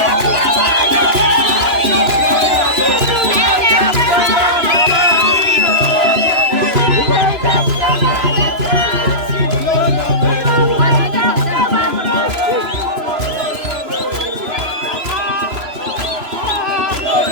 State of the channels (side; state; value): left; late; 3.0 ms